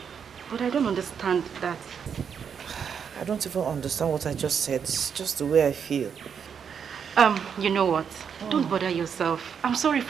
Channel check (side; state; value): left; quieter; 7.2 dB